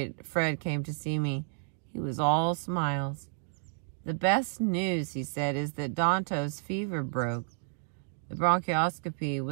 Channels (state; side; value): silent; left; digital silence